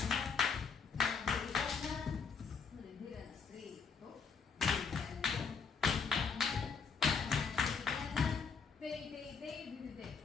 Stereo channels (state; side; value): quieter; right; 5.6 dB